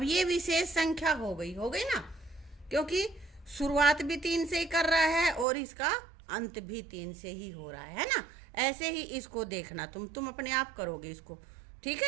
ये विशेष संख्या हो गई ना, क्योंकि शुरुआत भी 3 से ही कर रहा है और इसका अंत भी 3 से ही हो रहा है ना। ऐसे ही इसको देखना, तुम अपने आप करोगे इसको। ठीक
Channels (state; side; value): drops out; left; at 5.5 s